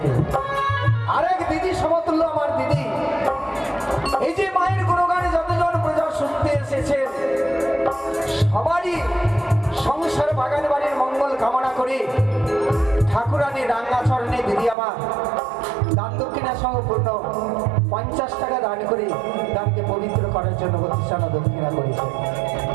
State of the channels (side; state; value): left; drops out; at 14.8 s